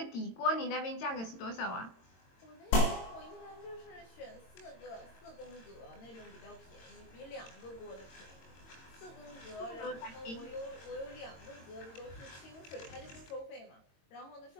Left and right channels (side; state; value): right; late; 22 ms